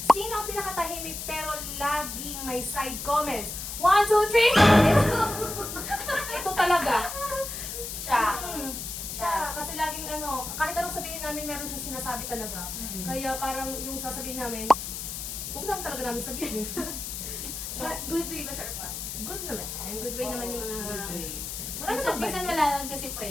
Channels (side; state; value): left; noise; hiss, 6 dB below the sound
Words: Sino ang pinakatahimik pero laging may side comments? 1, 2, 3! Ito talaga. Siya. Siya. Kasi laging kahit anong sabihin namin, meron siyang sinasabi talaga. Kaya parang yung sasabihin namin, huwag lang talaga namin sabihin. But good way ba, Sharpa? Good naman. Good way naman yung mga... Good way. Wala namang Minsan bad. wala lang kasi